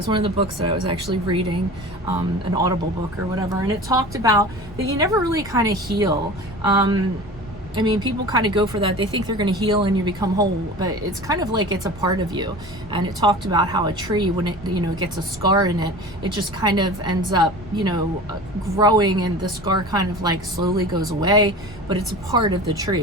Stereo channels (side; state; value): both; normal; correlation 0.36